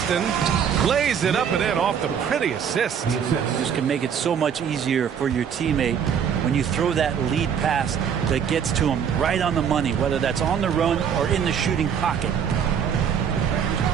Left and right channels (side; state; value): left; quieter; 7.8 dB